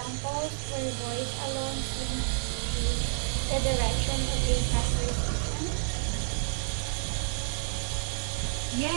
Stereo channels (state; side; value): silent; left; digital silence